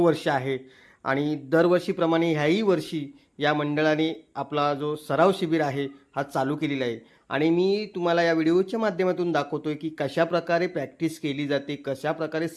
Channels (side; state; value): both; identical; correlation 1.00